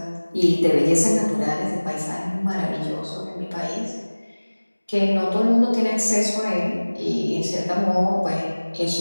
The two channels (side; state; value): both; inverted; correlation -1.00